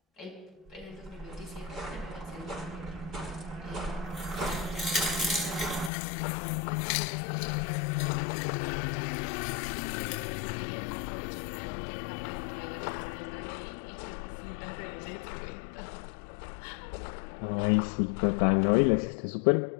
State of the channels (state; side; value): drops out; right; at 5.9 s